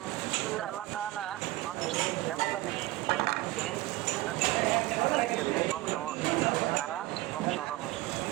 আল্লাহ তাআলা মানুষকে এমনভাবে যে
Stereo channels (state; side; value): quieter; left; 18.2 dB